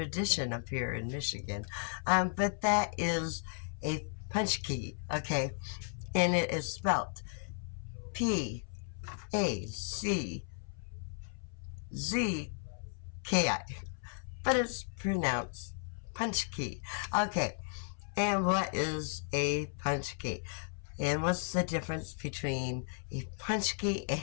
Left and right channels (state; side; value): silent; right; 54 dB below the other